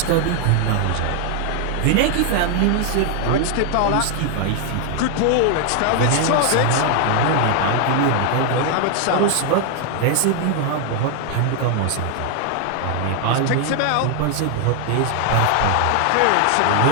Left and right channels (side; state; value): both; different; correlation 0.00